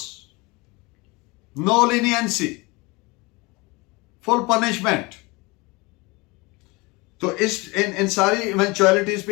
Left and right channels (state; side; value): quieter; right; 25.2 dB